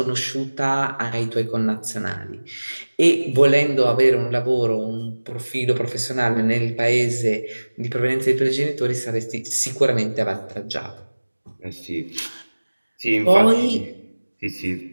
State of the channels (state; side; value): inverted; both; correlation -1.00